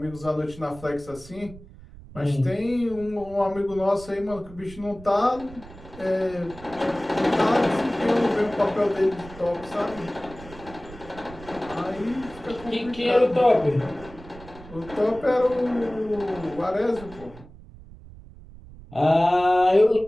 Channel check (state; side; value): noise; right; rumble, 18 dB below the sound